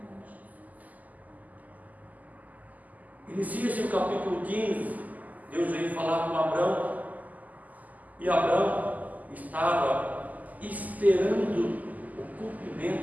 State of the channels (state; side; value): late; left; 0.079 ms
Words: Inicia-se o capítulo 15, Deus veio falar com Abraão, e Abraão estava esperando o